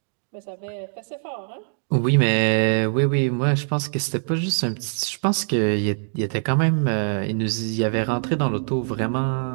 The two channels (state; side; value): silent; left; digital silence